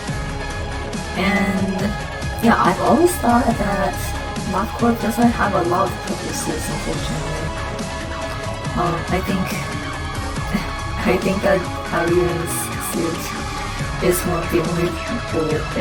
And yeah, I've always thought that LabCorp doesn't have a lot of purposes, unfortunately. I think that Harry's suit is one of the only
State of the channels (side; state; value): both; identical; correlation 1.00